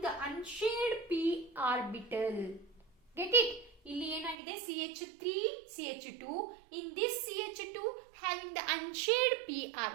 the unshared p orbital. Get it? ಇಲ್ಲಿ ಏನಾಗಿದೆ? CH3 CH2. In this CH2 having the unshared p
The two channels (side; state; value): left; drops out; at 4.4 s